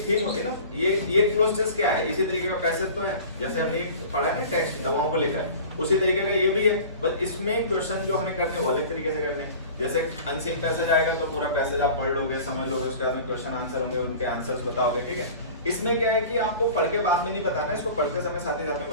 थीम होती है ना, ये क्लोज टेस्ट क्या है, इसी तरीके का पैसेज तो है, जैसे हमने पढ़ा है ना टेक्स्ट दवाओं को लेकर, उसी तरीके का ये भी है, बस इसमें क्वेश्चन जो हमें करने वो अलग तरीके से करने हैं। जैसे अनसीन पैसेज आएगा तो पूरा पैसेज आप पढ़ लोगे, समझ लोगे, उसके बाद में क्वेश्चन आंसर होंगे, उनके आंसर्स बताओगे। ठीक है, इसमें क्या है कि आपको पढ़ के बाद में नहीं बताना, इसको पढ़ते समय साथ ही साथ में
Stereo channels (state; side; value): inverted; both; correlation -0.41